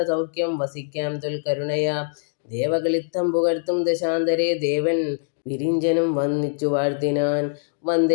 വസിക്കാം തൊൽക്കരുണയാ. ദേവകളിത്തം പുകഴ്ത്തും ദശാന്തരേ, ദേവൻ വിരിഞ്ചനും വന്നിച്ചു വാഴ്ത്തിനാൻ.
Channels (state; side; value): silent; right; digital silence